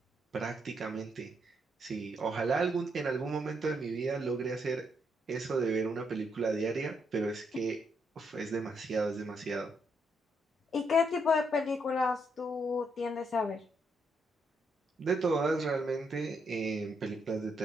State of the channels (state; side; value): normal; both; correlation 0.76